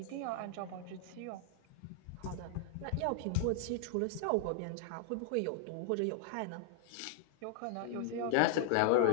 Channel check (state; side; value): different; both; correlation -0.01